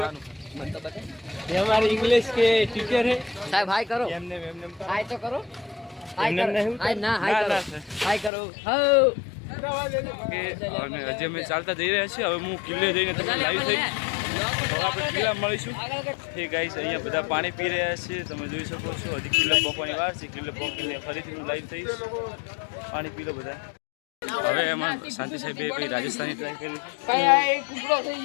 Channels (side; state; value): right; drops out; at 8.3 s